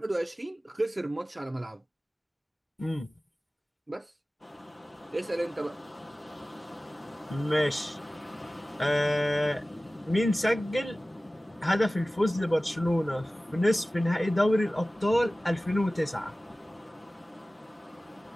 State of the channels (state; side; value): normal; both; correlation 0.97